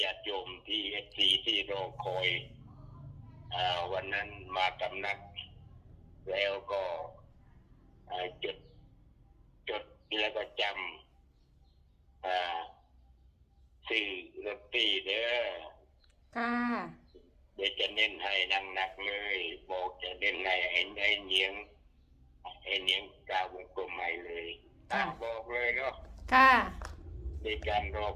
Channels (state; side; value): identical; both; correlation 1.00